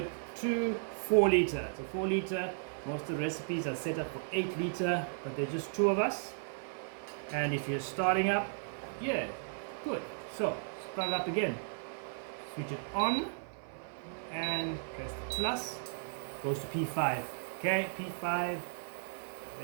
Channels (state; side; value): silent; left; 54 dB below the other